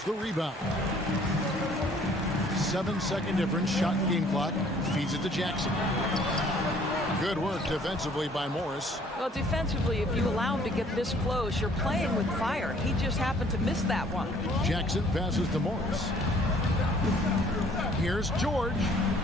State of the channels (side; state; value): both; normal; correlation 0.58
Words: the rebound. 7-second difference, shot and game clock. Feeds it to Jackson. Good work defensively by Morris. Well, defensively, if you allow him to get this close, you're playing with fire. He just happened to miss that one. Jackson passes to Morris. Here's George.